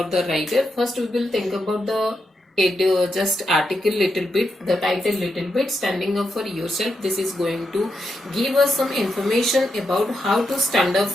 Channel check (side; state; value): both; normal; correlation 0.84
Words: the writer, first we will think about the just article little bit, the title little bit, standing up for yourself. This is going to give us some information about how to stand up